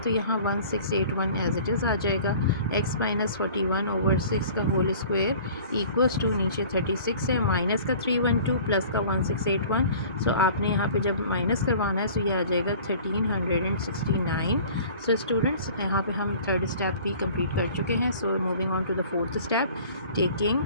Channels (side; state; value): both; inverted; correlation -0.46